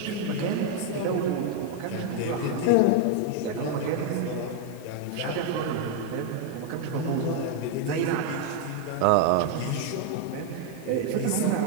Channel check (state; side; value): different; both; correlation 0.01